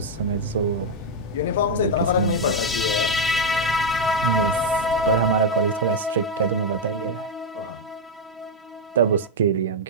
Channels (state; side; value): normal; both; correlation 0.01